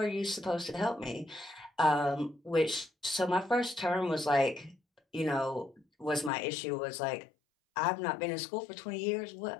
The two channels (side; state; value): right; drops out; at 6.3 s